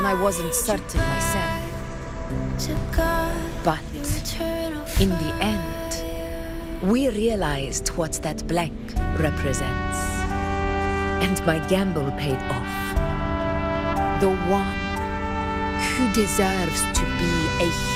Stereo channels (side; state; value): both; identical; correlation 1.00